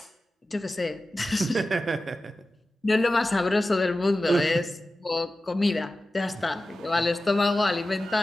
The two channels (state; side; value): normal; both; correlation 0.94